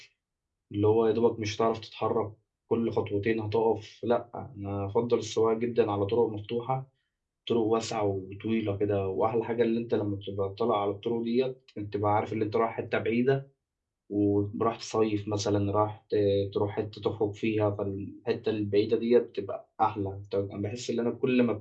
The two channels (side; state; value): both; identical; correlation 1.00